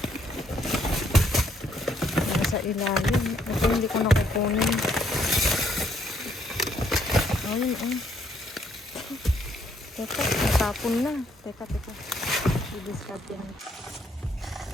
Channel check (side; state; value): both; normal; correlation 0.71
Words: Sa ilalim. Ito hindi ko nakukunin. Ayun, oh. Teka, natapon na. Teka. I-discard yan.